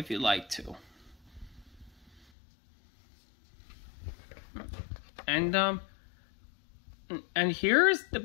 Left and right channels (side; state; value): right; drops out; at 2.2 s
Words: you'd like to. And here's the